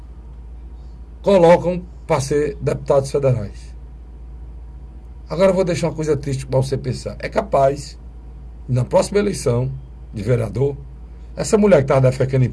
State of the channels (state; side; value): identical; both; correlation 1.00